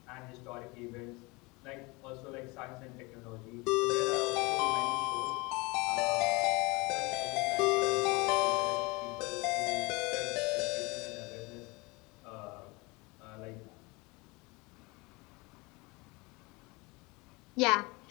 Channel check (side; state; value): right; quieter; 25.6 dB